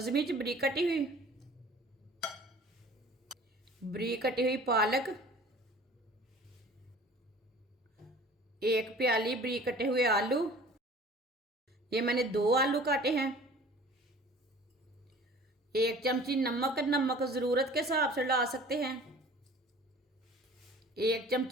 मिर्च बरीक कटी हुई पालक, 1 प्याली बरीक कटे हुए आलू। ये मैंने 2 आलू काटे हैं। 1 चमची नमक, नमक जरूरत के हिसाब से डाल सकते हैं। 1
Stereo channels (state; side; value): normal; both; correlation 0.47